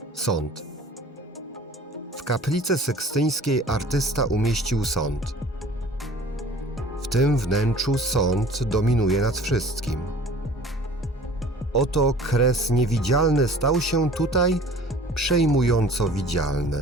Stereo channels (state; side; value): normal; both; correlation 0.47